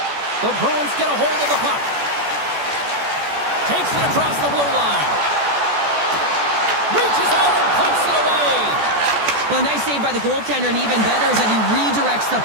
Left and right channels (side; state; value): left; late; 14 ms